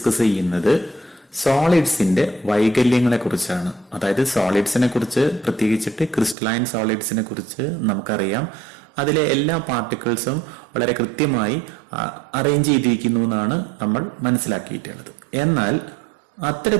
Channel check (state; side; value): drops out; left; at 6.4 s